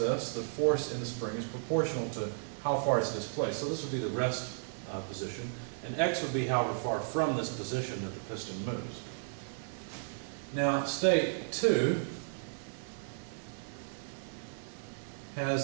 the force in the spring is proportional to how far it's displaced. So this would be the rest position, and X would be however far from this position that the piston moves. Now, state 2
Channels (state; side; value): silent; left; 55 dB below the other